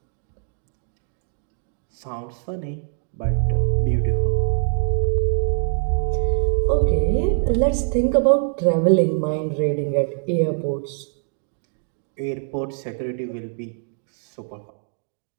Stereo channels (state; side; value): silent; left; digital silence